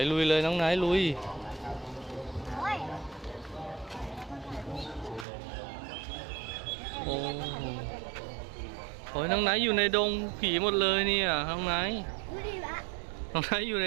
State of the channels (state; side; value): drops out; left; at 5.2 s